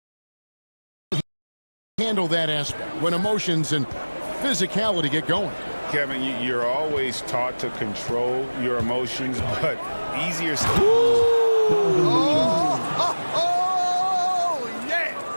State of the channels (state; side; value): inverted; both; correlation -1.00